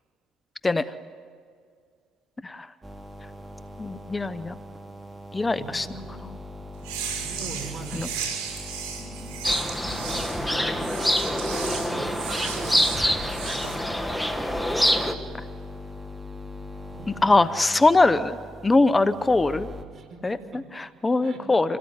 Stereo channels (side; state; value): both; normal; correlation 0.91